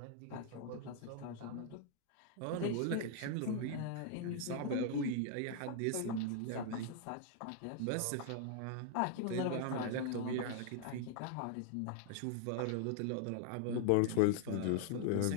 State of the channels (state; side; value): different; both; correlation -0.01